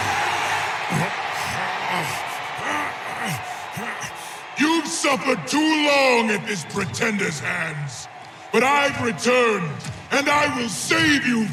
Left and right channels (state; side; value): identical; both; correlation 1.00